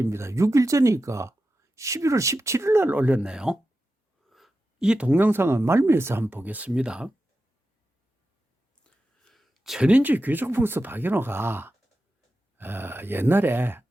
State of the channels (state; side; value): normal; both; correlation 0.91